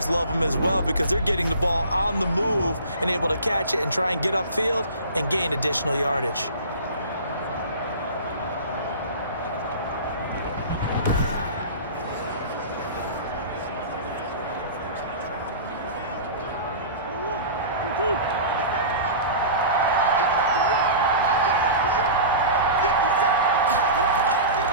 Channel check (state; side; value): inverted; both; correlation -0.35